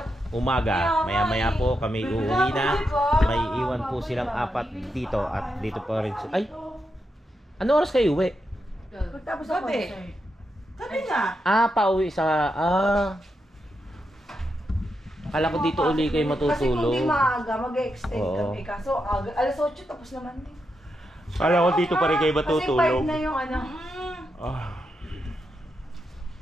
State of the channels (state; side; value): normal; both; correlation 0.85